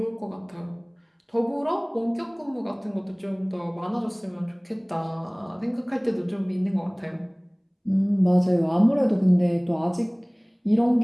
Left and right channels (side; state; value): both; identical; correlation 1.00